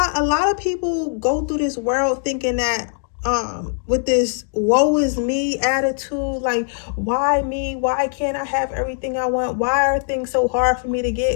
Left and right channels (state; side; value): silent; right; digital silence